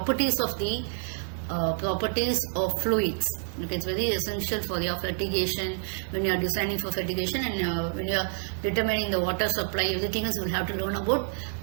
of fluids. Okay, it's very essential for your fertigation when you are designing for fertigation, and when you are determining the water supply, everything else you will have to learn about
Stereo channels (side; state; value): left; silent; 59 dB below the other